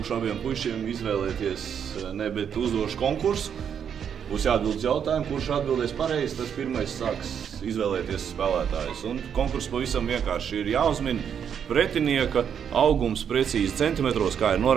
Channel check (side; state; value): left; quieter; 8.0 dB